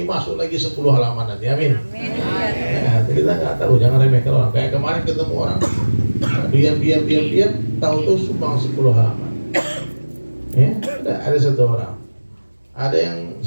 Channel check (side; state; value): both; inverted; correlation -1.00